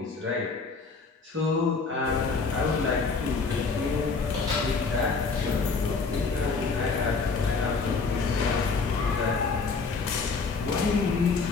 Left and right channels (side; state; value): right; quieter; 4.6 dB